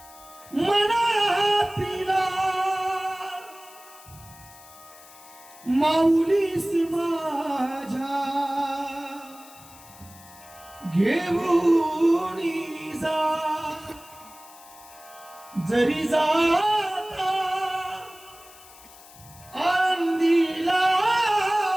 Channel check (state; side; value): noise; left; hiss, 21 dB below the sound